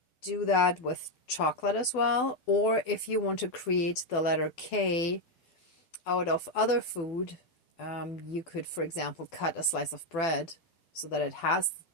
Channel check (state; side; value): late; right; 12 ms